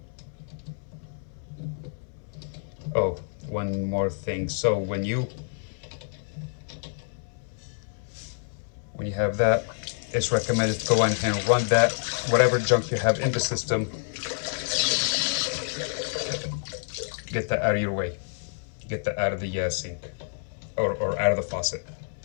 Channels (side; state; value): right; silent; 59 dB below the other